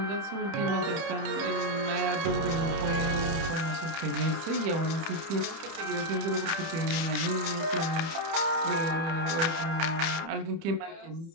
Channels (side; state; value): left; late; 30 ms